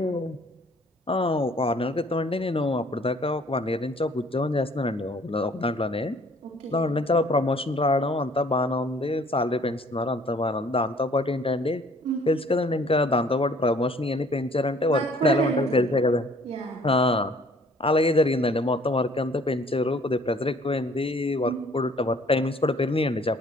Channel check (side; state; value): both; normal; correlation 0.57